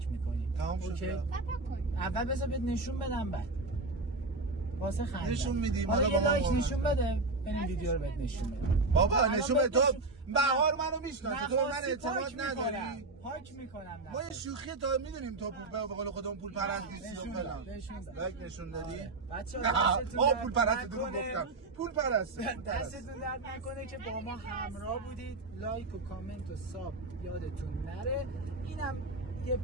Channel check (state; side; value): quieter; left; 3.3 dB